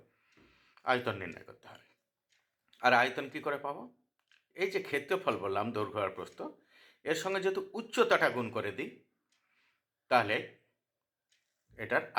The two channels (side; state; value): both; identical; correlation 1.00